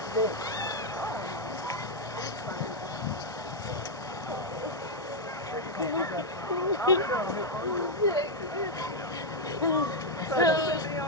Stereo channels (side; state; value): both; normal; correlation -0.01